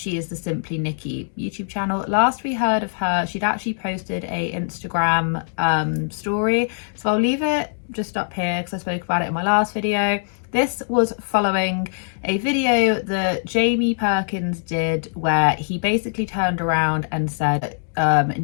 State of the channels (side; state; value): right; silent; digital silence